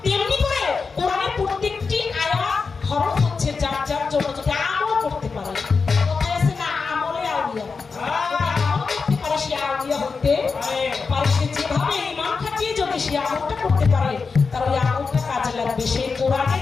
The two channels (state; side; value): quieter; right; 4.8 dB